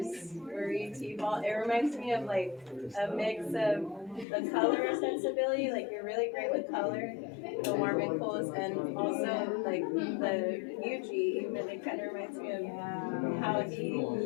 Marie T-Ball, it reminds me of like a mix of the color sensibility, like you're really great with color, the warm and cools, and also like the UG, even it kind of reminds me of how he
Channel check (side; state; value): right; drops out; at 4.2 s